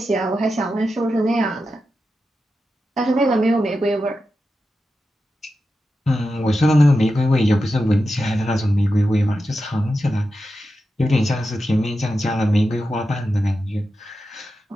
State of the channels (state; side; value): normal; both; correlation 0.90